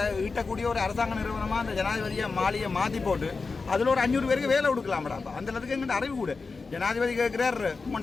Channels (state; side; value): quieter; right; 4.3 dB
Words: ஈட்டக்கூடிய ஒரு அரசாங்க நிறுவனமாக அந்த ஜனாதிபதியை மாளிகையை மாற்றி போட்டு அதில் ஒரு 500 பேருக்கு வேலை கொடுக்கலாம்டா. அந்த அளவுக்கு எங்கள்கிட்ட அறிவு கூட. ஜனாதிபதி கேட்குறார்